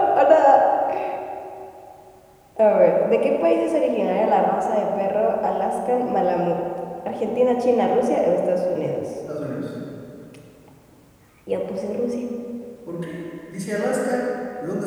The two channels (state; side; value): identical; both; correlation 1.00